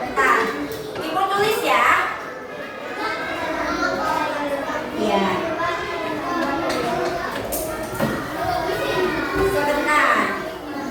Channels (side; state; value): both; identical; correlation 1.00